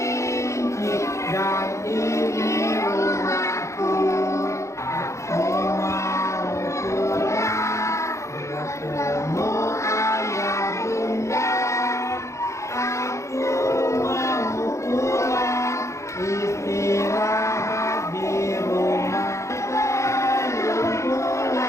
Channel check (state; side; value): late; right; 0.14 ms